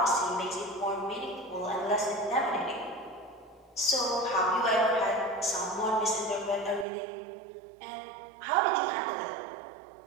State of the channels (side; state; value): left; drops out; at 6.9 s